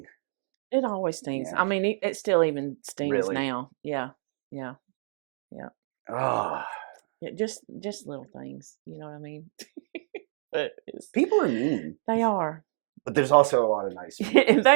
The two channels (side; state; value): left; silent; digital silence